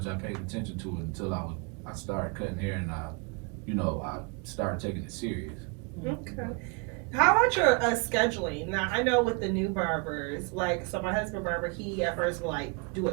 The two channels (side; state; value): left; quieter; 31.2 dB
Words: I paid attention to it until I started cutting hair and I started taking it serious. Okay. How about your scheduling? Now, I know with the new barbers, so my husband barber, he at first would do a